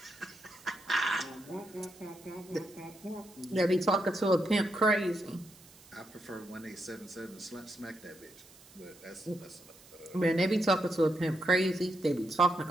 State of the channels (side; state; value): right; noise; hiss, 23 dB below the sound